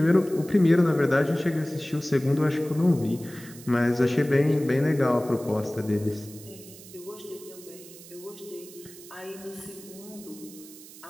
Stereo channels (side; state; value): right; noise; hiss, 18 dB below the sound